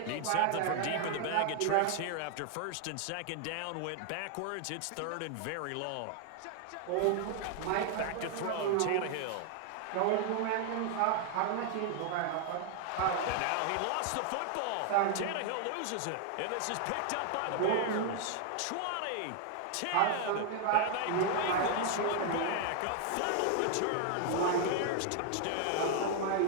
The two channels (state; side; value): different; both; correlation 0.00